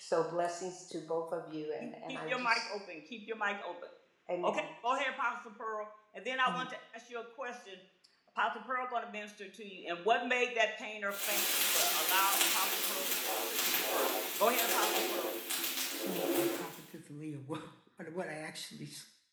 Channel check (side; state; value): both; identical; correlation 1.00